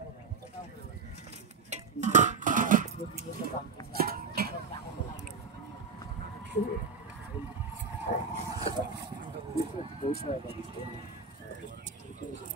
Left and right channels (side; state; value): left; quieter; 5.1 dB